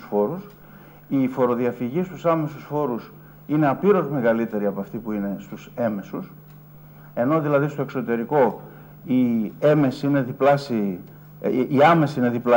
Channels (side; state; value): both; identical; correlation 1.00